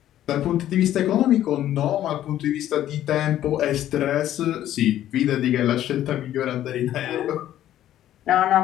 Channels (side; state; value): right; quieter; 12.4 dB